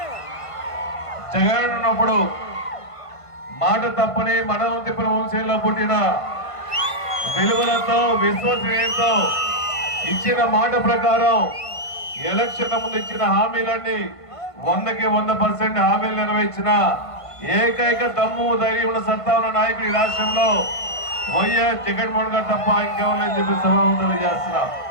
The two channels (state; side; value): late; right; 1.5 ms